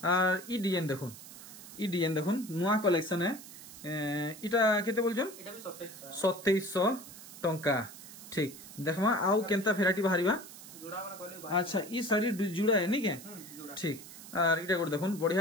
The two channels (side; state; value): right; noise; hiss, 15 dB below the sound